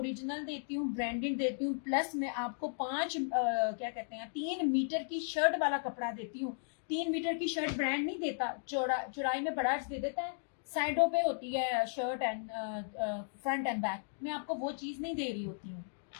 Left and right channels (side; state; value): right; silent; digital silence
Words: देती हूँ, ब्रांडेड देती हूँ, प्लस मैं आपको 3 मीटर की शर्ट वाला कपड़ा देती हूँ। 3 मीटर की शर्ट ब्रांड नहीं देता, चौड़ाई में बड़ा दे देता है, साइडों पे होती है shirt and front end back. मैं आपको वो चीज नहीं दे रही होती हूँ।